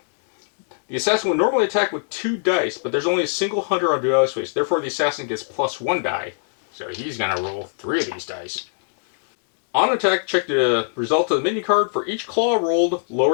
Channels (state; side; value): silent; right; digital silence